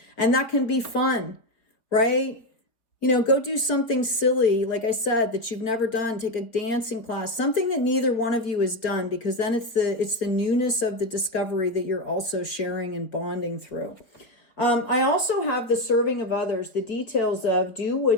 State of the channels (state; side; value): late; right; 4.3 ms